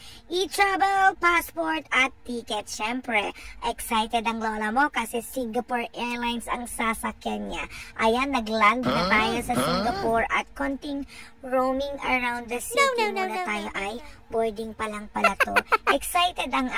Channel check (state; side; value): identical; both; correlation 1.00